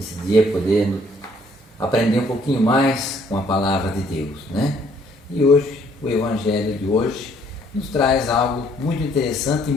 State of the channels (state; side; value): normal; both; correlation 0.64